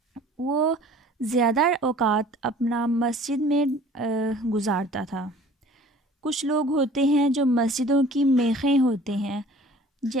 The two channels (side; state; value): both; normal; correlation 0.49